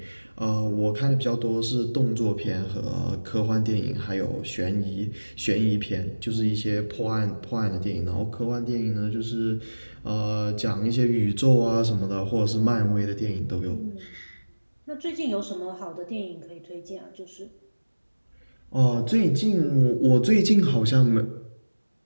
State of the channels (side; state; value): both; inverted; correlation -1.00